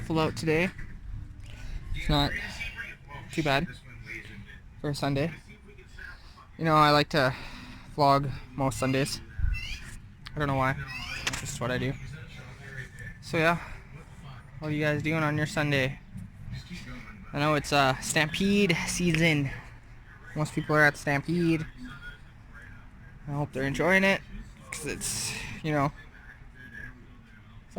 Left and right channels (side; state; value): both; identical; correlation 1.00